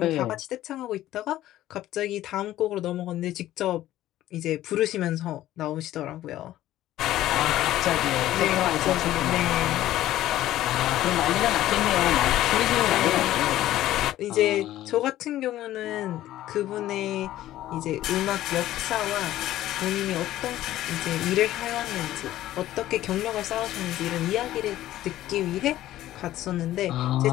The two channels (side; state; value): right; quieter; 14.1 dB